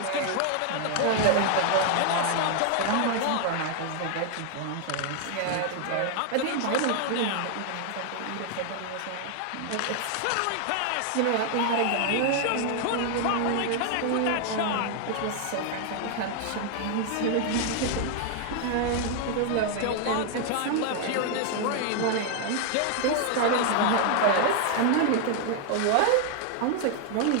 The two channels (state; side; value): different; both; correlation 0.00